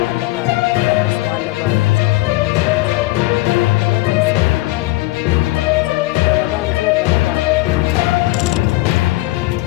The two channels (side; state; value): right; quieter; 19.4 dB